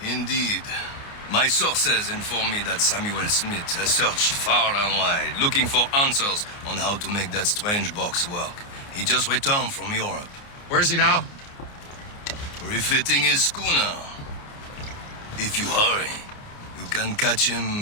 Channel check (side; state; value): right; late; 29 ms